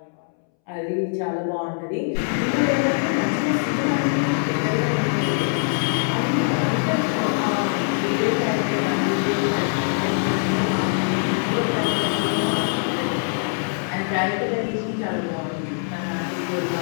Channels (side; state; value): right; silent; 63 dB below the other